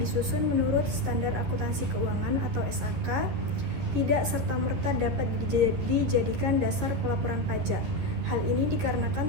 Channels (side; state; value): left; late; 11 ms